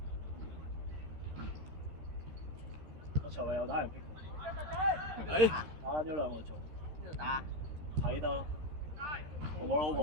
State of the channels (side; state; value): left; late; 13 ms